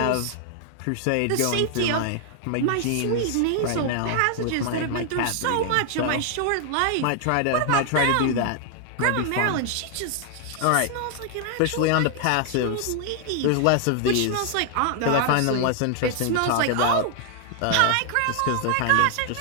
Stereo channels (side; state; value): both; different; correlation 0.00